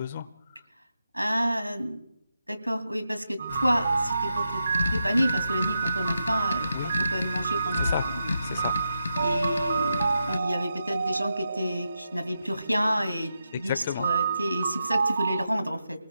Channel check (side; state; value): both; inverted; correlation -0.86